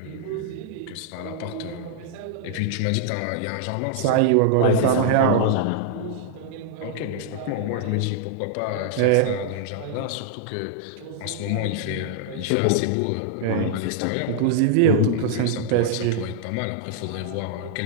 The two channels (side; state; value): both; different; correlation -0.01